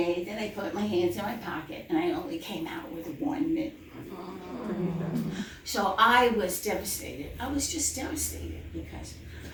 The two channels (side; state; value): both; identical; correlation 1.00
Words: that I put my hands in my pocket, and I only came out with one mitten. So I was devastated. I was just devastated because